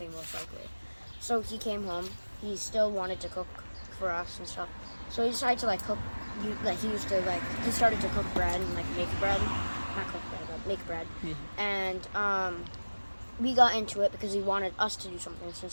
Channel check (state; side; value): inverted; both; correlation -1.00